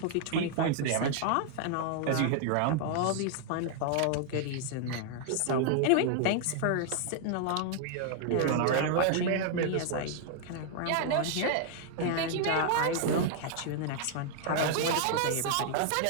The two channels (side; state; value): both; different; correlation 0.00